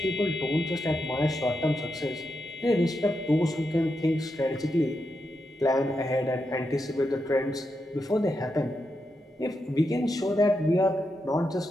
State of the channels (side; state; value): both; normal; correlation 0.86